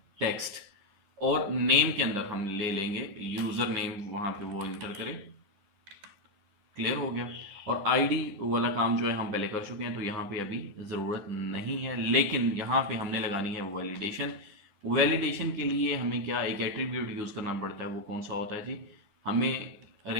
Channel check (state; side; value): late; left; 10 ms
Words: टेक्स्ट। और नेम के अंदर हम ले लेंगे यूज़र नेम, वहाँ पे वो इंटर करें। क्लियर हो गया? और आईडी वाला काम जो है हम पहले कर चुके हैं, तो यहाँ पे अभी ज़रूरत नहीं है। लेकिन यहाँ पे हमने लगानी है वैलिडेशन। वैलिडेशन के लिए हमें क्या एक एट्रीब्यूट यूज़ करना पड़ता है। वो कौन सा होता है जी? हमें